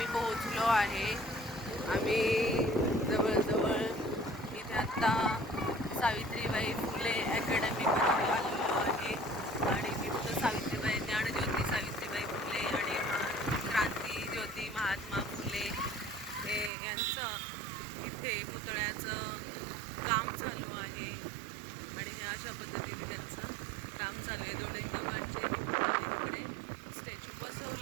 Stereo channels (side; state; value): left; drops out; at 16.7 s